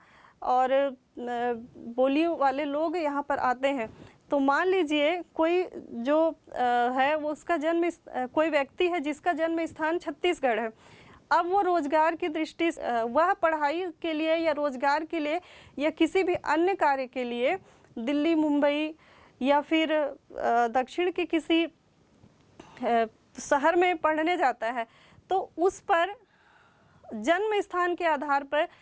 और बोली वाले लोग यहाँ पर आते हैं। तो मान लीजिए कोई जो है वो उसका कोई व्यक्ति है जिसका जन्म स्थान छत्तीसगढ़ है। अब वो रोजगार की दृष्टि से, वह पढ़ाई के लिए या रोजगार के लिए या किसी भी अन्य कार्य के लिए दिल्ली, मुंबई या फिर दक्षिण के किसी शहर में पढ़ने जाता है, तो उस पर जन्म स्थान के आधार पर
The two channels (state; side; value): identical; both; correlation 1.00